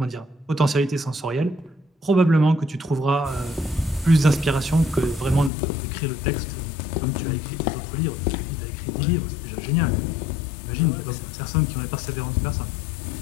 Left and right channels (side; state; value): right; drops out; at 5.5 s